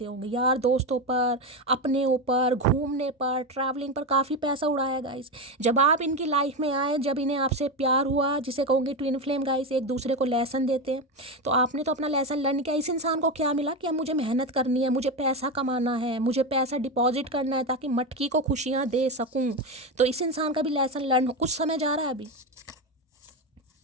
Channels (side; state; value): both; normal; correlation 0.15